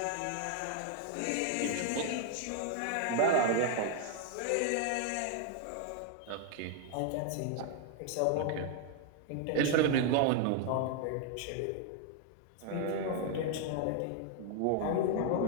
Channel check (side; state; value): both; different; correlation 0.00